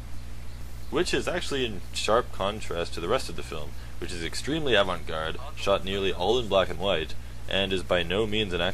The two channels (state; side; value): identical; both; correlation 1.00